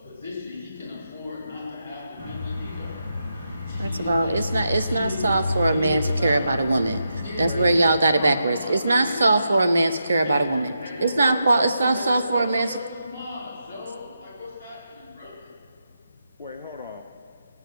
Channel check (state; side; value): inverted; both; correlation -0.85